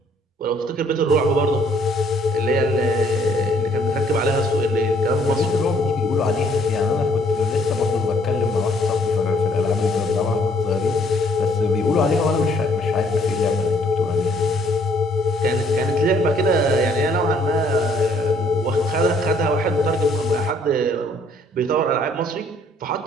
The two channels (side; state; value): both; normal; correlation 0.63